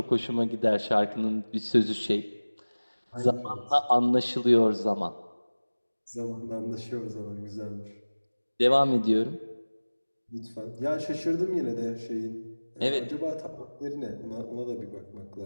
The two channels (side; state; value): both; inverted; correlation -1.00